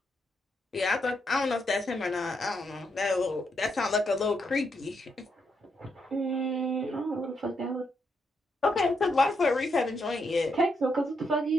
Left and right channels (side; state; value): both; normal; correlation 0.79